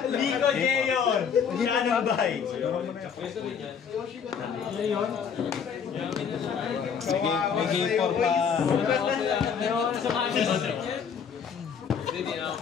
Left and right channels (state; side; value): quieter; right; 7.0 dB